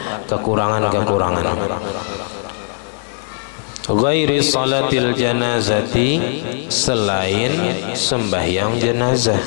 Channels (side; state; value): right; silent; digital silence